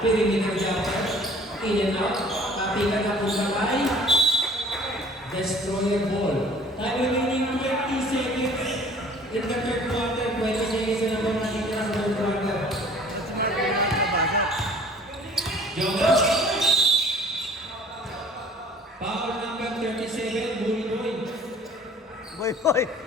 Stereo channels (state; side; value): normal; both; correlation 0.52